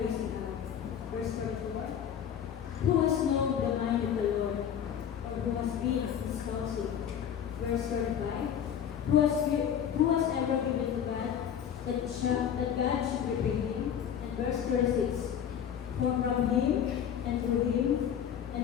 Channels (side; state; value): right; quieter; 8.9 dB